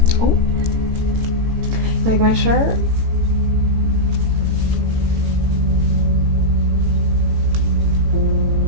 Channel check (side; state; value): left; late; 18 ms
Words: Oh, like my shirt?